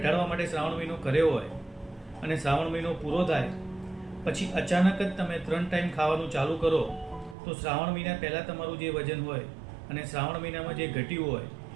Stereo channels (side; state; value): left; drops out; at 7.4 s